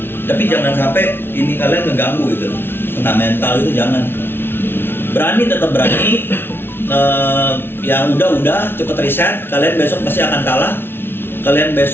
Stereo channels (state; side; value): late; right; 0.11 ms